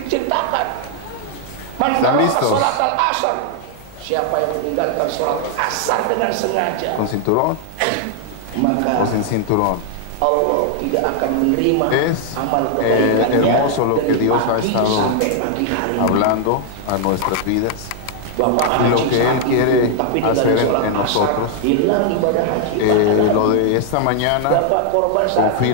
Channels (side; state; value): both; different; correlation 0.00